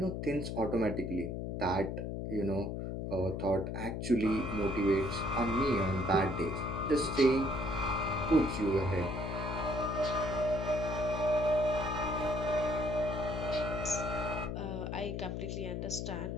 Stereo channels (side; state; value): left; noise; hum, 3 dB below the sound